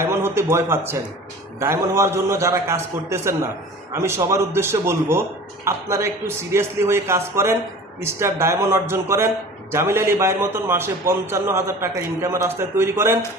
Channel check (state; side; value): normal; both; correlation 0.41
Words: হতে ভয় পাচ্ছেন, ডায়মন্ড হওয়ার জন্য যারা কাজ করতেছেন না, আমি সবার উদ্দেশ্যে বলবো আপনারা একটু সিরিয়াসলি হয়ে কাজ করেন, স্টার ডায়মন্ড অর্জন করেন, জামিল আলী ভাইয়ের মতন মাসে 55,000 টাকা ইনকামের রাস্তায় তৈরি করেন।